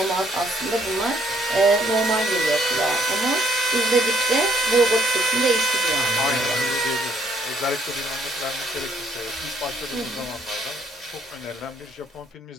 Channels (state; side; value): normal; both; correlation 0.67